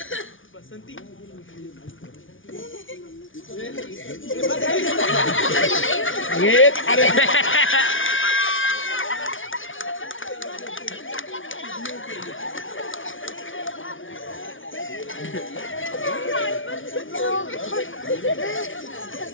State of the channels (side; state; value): right; late; 0.57 ms